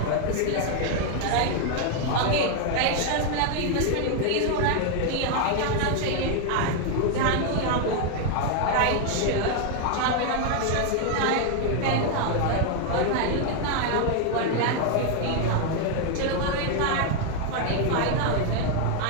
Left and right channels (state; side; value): different; both; correlation 0.00